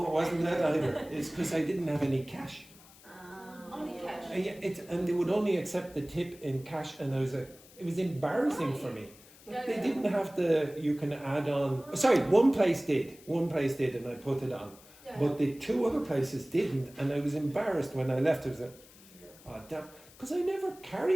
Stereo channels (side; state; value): left; noise; hiss, 23 dB below the sound